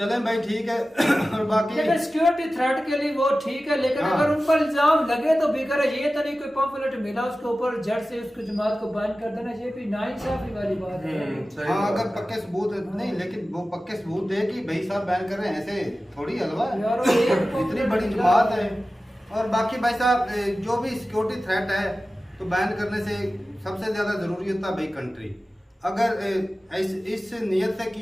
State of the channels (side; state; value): both; normal; correlation 0.95